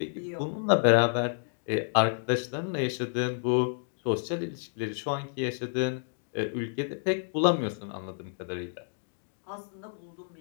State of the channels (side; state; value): right; silent; digital silence